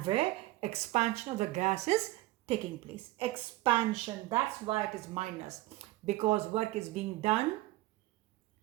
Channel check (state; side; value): quieter; left; 17.7 dB